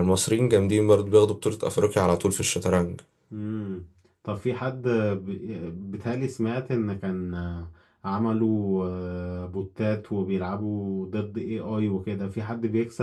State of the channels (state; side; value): identical; both; correlation 1.00